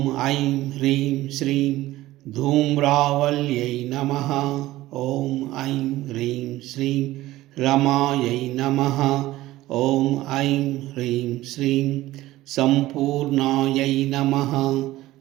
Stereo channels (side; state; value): left; quieter; 16.5 dB